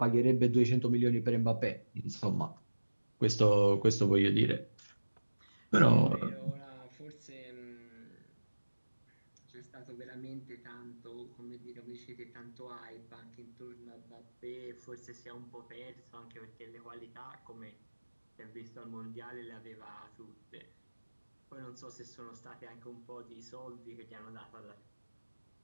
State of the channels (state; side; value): inverted; both; correlation -1.00